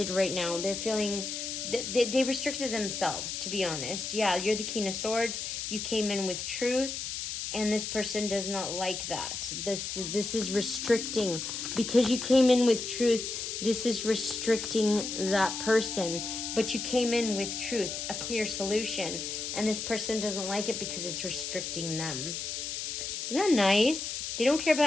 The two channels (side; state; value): left; noise; hiss, 4 dB below the sound